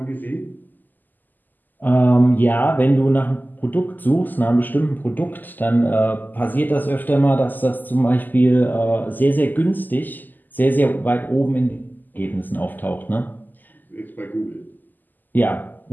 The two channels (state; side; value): late; right; 0.086 ms